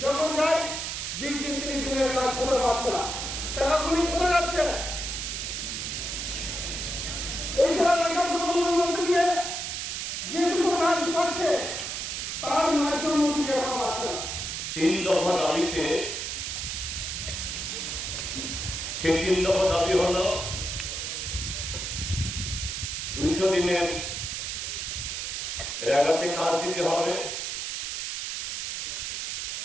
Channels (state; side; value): noise; right; hiss, 4 dB below the sound